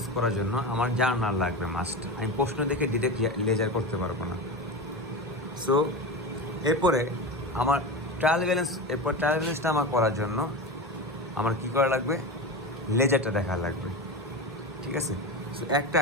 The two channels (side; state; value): both; normal; correlation 0.24